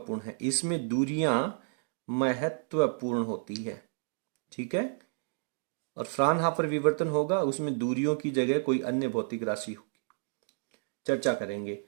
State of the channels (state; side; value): silent; left; digital silence